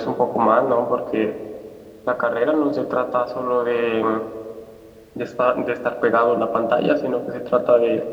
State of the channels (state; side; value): identical; both; correlation 1.00